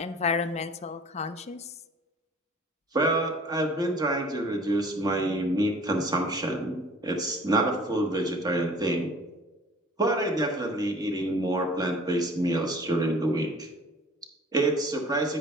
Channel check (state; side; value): normal; both; correlation 0.49